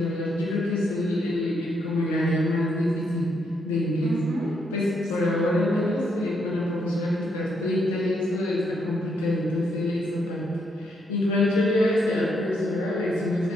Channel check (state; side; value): normal; both; correlation 0.76